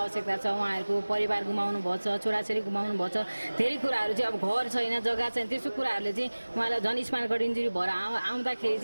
छ। उहाँहरूको परिवार गुमाउनु भएको छ, छोराछोरी गुमाउनु भएको छ, धेरै कुराहरू चाहिँ अब घर छैन, जग्गा छैन, त्यस्तो कुराहरूले चाहिँ उहाँलाई झन् स्पाइनल कर्ड इन्जुरी भएर आउँदाखेरि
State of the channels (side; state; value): both; inverted; correlation -1.00